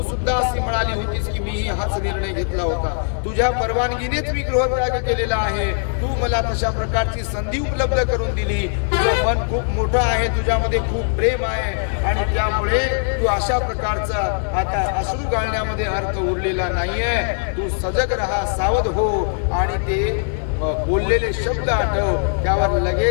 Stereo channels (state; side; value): silent; right; digital silence